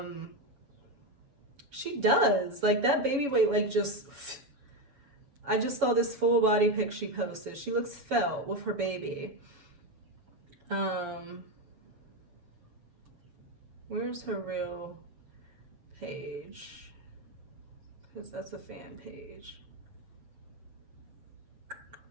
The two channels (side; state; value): left; late; 7.1 ms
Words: She does. Like, that baby weight, like, just... I just saw this full body pic she posted. She looks svelte with her baby. Where's her real page? Because that's a fan page.